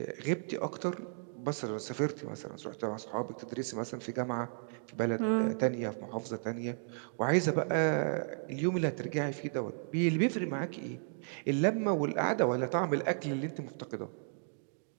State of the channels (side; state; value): left; silent; digital silence